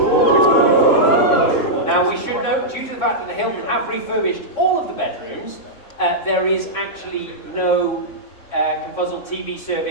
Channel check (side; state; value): right; late; 3.6 ms